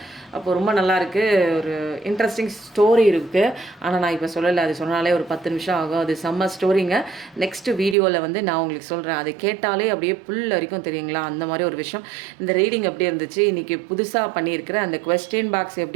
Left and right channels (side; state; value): left; drops out; at 8.0 s